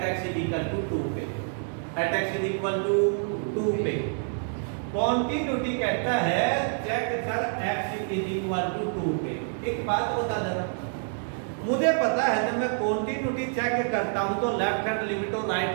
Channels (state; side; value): silent; left; 60 dB below the other